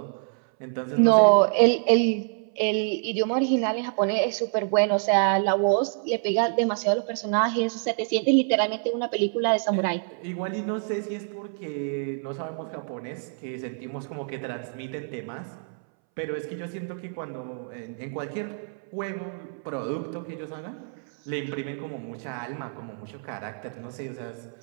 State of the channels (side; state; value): left; silent; 60 dB below the other